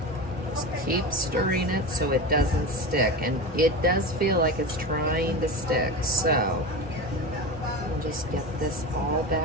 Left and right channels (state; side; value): normal; both; correlation 0.26